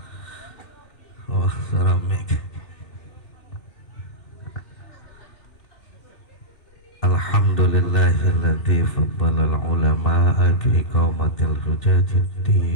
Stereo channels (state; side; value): late; right; 2.7 ms